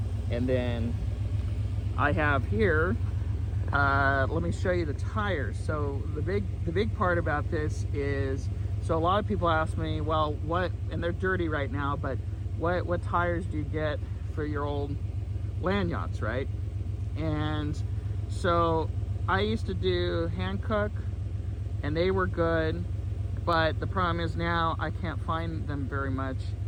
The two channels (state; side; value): identical; both; correlation 1.00